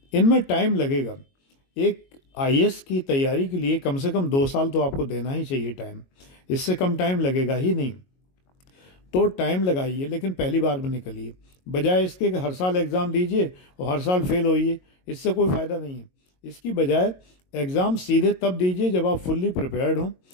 इनमें टाइम लगेगा। एक IAS की तैयारी के लिए कम से कम 2 साल तो आपको देना ही चाहिए टाइम, इससे कम टाइम लगेगा ही नहीं। तो टाइम लगाइए लेकिन पहली बार में निकलिए, बजाय इसके कि हर साल एग्ज़ाम दीजिए और हर साल फेल होइए, इससे कोई फ़ायदा नहीं है। इसकी बजाय एग्ज़ाम सीधे तब दीजिए जब आप फुल्ली प्रिपेयर्ड हों,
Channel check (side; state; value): right; late; 22 ms